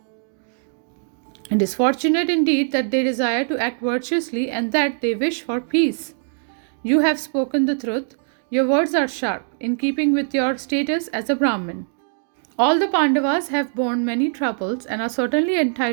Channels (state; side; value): silent; left; digital silence